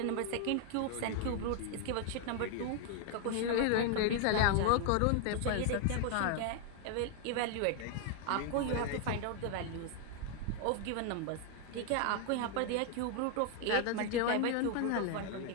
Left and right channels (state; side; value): different; both; correlation 0.00